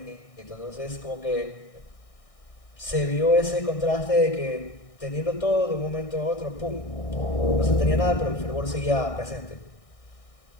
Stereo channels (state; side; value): late; right; 1.6 ms